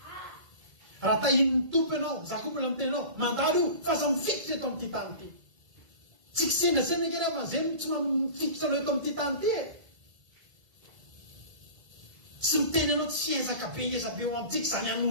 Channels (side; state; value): left; late; 1.7 ms